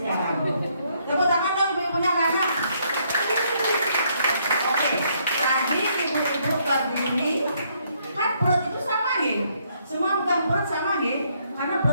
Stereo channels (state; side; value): inverted; both; correlation -0.71